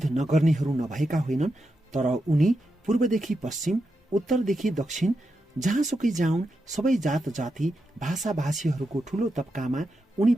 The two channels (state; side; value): normal; both; correlation 0.87